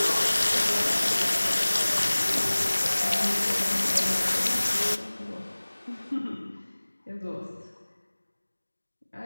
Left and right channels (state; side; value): inverted; both; correlation -1.00